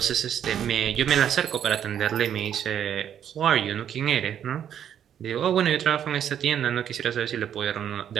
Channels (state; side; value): quieter; left; 9.5 dB